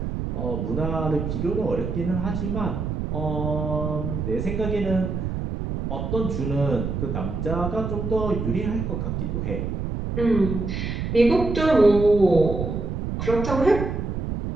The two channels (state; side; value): noise; right; rumble, 3 dB below the sound